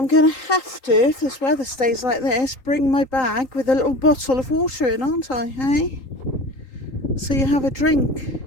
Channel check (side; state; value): right; late; 3.8 ms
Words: going to have to, if this weather stays like this, bring my bag with a little bottle of water in, aren't I, hey? So you have a drink.